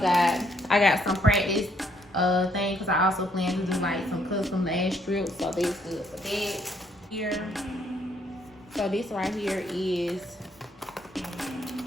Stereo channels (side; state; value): both; normal; correlation 0.69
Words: got some practice thing because I also plan to do like some custom lash strips, so this good for that. Here. So this right here is